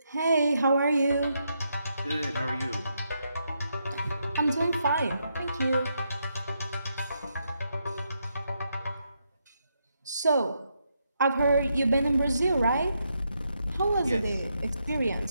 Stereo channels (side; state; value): both; inverted; correlation -0.80